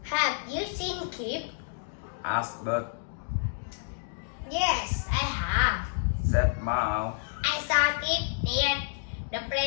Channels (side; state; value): right; silent; digital silence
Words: Have you seen Kip? Asked Bird. Yes, I have. Said Mouse. I saw Kip near